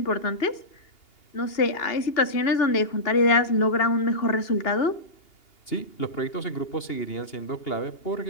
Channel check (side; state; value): right; late; 2.8 ms